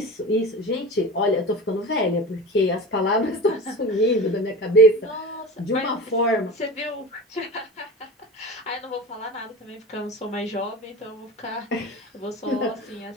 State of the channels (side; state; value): both; normal; correlation 0.32